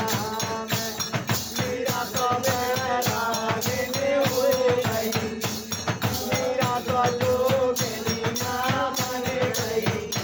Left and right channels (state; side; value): identical; both; correlation 1.00